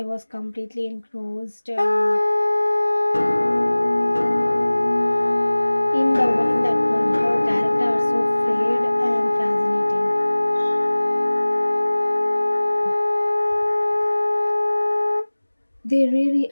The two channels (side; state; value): both; inverted; correlation -1.00